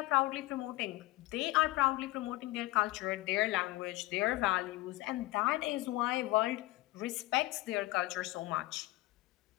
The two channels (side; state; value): right; quieter; 18.8 dB